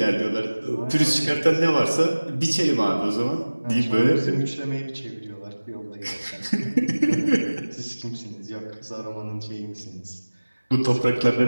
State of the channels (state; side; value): inverted; both; correlation -1.00